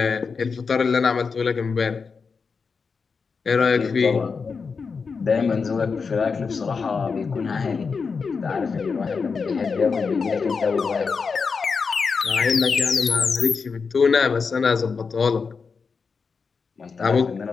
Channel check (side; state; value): right; quieter; 5.2 dB